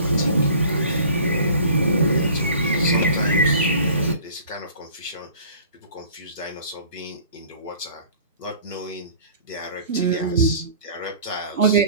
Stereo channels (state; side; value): inverted; both; correlation -0.48